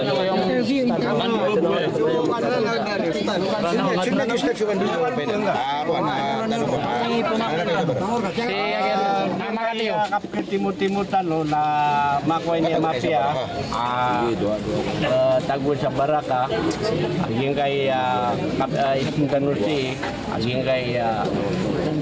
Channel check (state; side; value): identical; both; correlation 1.00